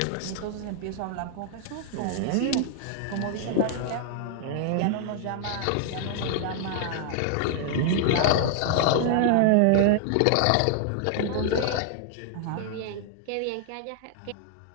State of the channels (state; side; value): different; both; correlation -0.01